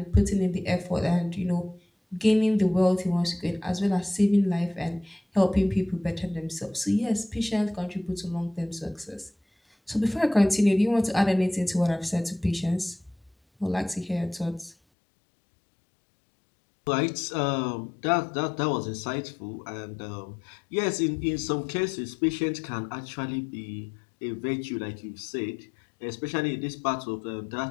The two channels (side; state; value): right; drops out; at 14.8 s